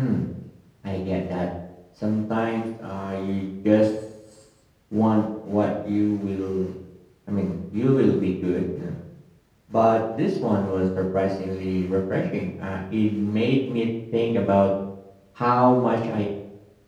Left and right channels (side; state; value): both; identical; correlation 1.00